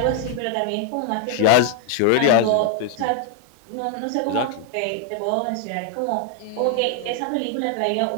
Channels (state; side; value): different; both; correlation 0.00